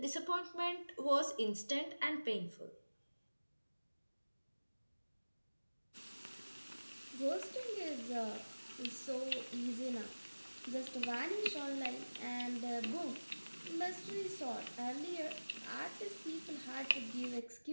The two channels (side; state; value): both; inverted; correlation -1.00